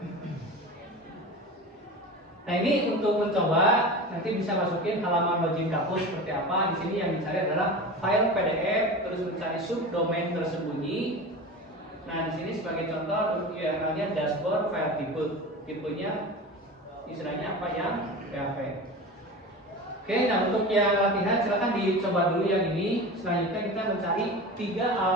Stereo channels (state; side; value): normal; both; correlation 0.31